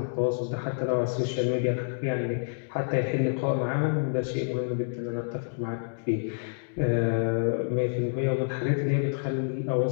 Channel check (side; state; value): right; silent; digital silence